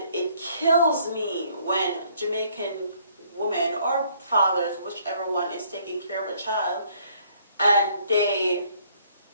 it kills me when Jamaican women or fathers, whichever one is taking care of a child, and they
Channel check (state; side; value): inverted; both; correlation -0.64